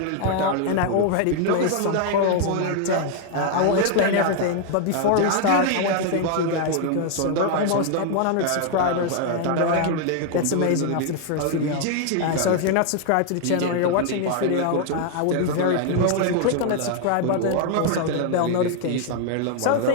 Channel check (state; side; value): different; both; correlation 0.00